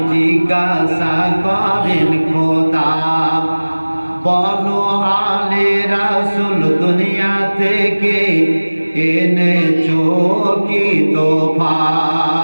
জিজ্ঞাসা করেন খোদা বলো আলে রাসূল দুনিয়া থেকে এনেছো কি তোফা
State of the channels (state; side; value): inverted; both; correlation -1.00